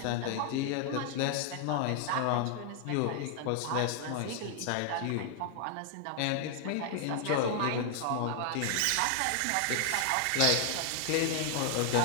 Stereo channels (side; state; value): both; different; correlation 0.00